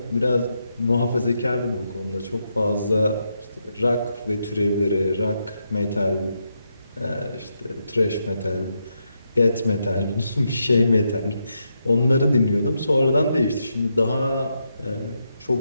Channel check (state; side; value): inverted; both; correlation -0.83